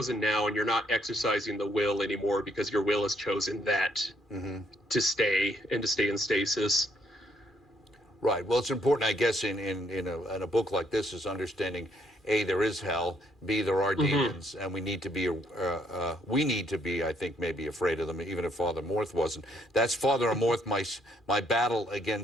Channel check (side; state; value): both; normal; correlation 0.69